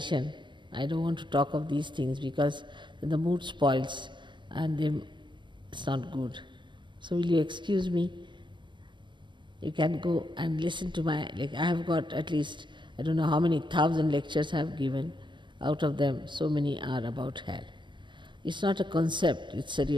I don't want to talk of these things because the mood spoils and it's not good. So will you excuse me? You can go and listen to I have got at least, I don't know how many 1,000 lectures I have given. Out of them, so many are about hell. It's not a concept, it's a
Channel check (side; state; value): left; late; 0.22 ms